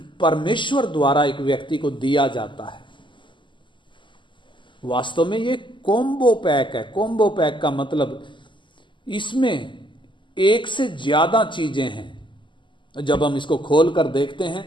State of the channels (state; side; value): late; right; 0.24 ms